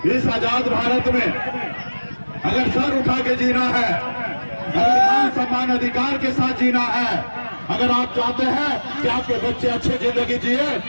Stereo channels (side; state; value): both; inverted; correlation -1.00